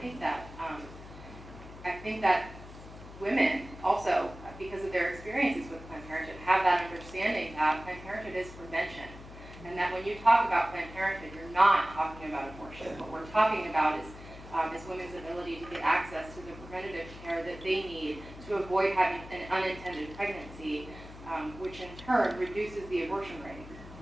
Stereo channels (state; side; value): noise; left; hum, 15 dB below the sound